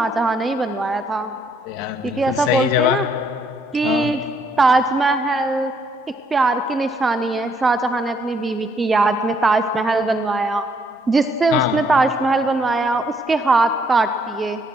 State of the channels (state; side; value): normal; both; correlation 0.69